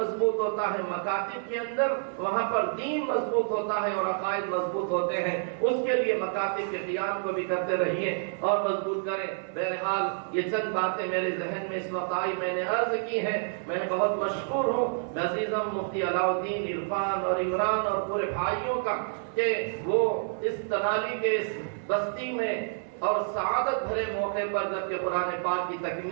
ہوتا ہے مکاتب کے اندر، وہاں پر دین مضبوط ہوتا ہے اور عقائد مضبوط ہوتے ہیں. اس کے لیے مکاتب کے قیام کو بھی کرتے رہیے اور مضبوط کریں. بہرحال یہ چند باتیں میرے ذہن میں اس وقت آئی، میں نے عرض کی ہے. میں بہت مشکور ہوں عزیزم مفتی علاء الدین عرفان اور عمران اور پورے بھائیوں کا کہ وہ اس تنالی کے اس بستی میں اور سعادت بھرے موقع پر جبکہ قرآن پاک کی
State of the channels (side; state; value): left; silent; 59 dB below the other